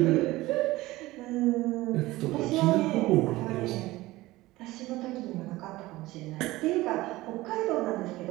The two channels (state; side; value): quieter; left; 18.6 dB